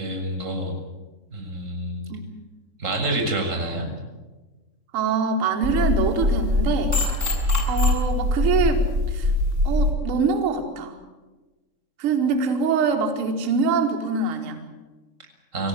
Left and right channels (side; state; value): left; late; 3.6 ms